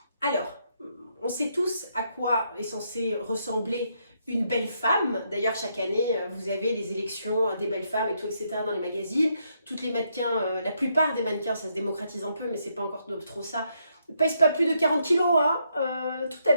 Alors, on sait tous à quoi est censée ressembler une belle femme. D'ailleurs, chaque année, vous avez les élections des belles femmes et tout, etc. dans les magazines. Toutes les mannequins, la plupart des mannequins, ça se démocratise un peu, mais c'est pas encore trop ça, pèse pas plus de 40 kilos, hein, tout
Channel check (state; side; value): inverted; both; correlation -0.76